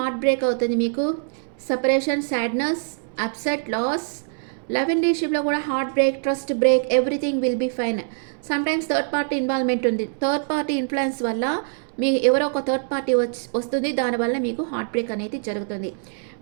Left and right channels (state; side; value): silent; left; 63 dB below the other